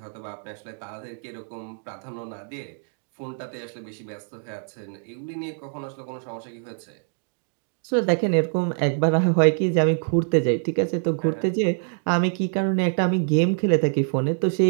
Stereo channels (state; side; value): silent; left; 62 dB below the other